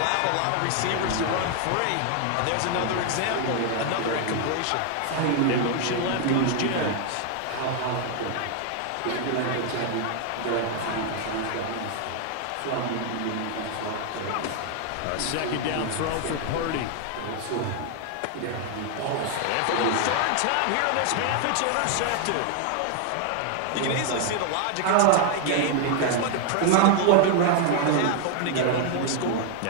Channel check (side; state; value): both; different; correlation 0.00